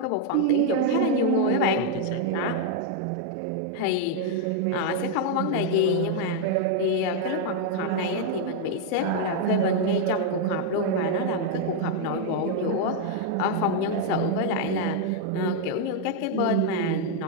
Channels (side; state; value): both; different; correlation 0.00